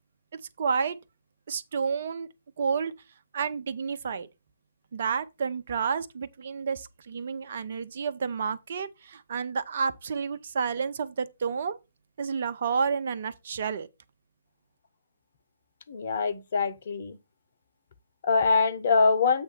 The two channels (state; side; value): inverted; both; correlation -0.74